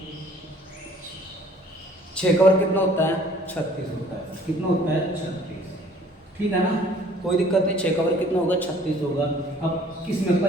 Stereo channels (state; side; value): normal; both; correlation 0.55